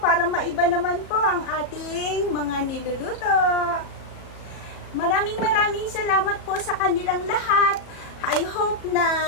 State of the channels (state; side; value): late; right; 37 ms